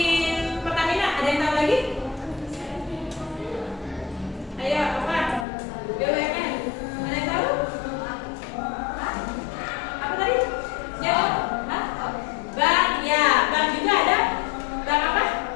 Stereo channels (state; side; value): drops out; right; at 5.5 s